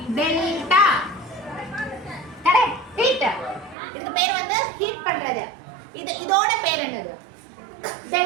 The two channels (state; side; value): drops out; left; at 3.8 s